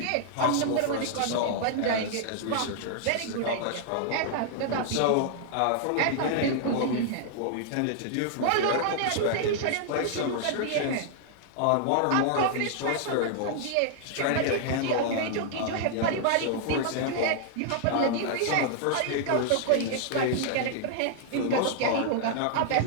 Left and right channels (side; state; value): both; different; correlation 0.00